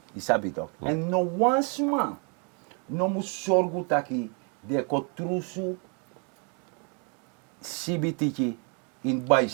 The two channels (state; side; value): quieter; left; 36.4 dB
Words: Isabi toch? En no once man, no mu sorgu taki, de ko trusu sibitiki in